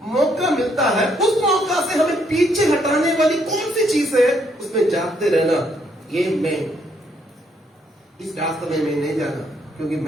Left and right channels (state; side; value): normal; both; correlation 0.71